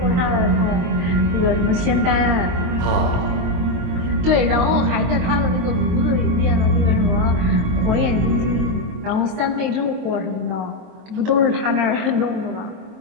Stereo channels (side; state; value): left; late; 23 ms